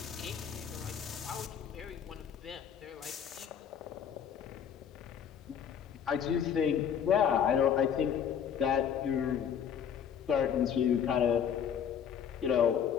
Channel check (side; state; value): right; quieter; 8.2 dB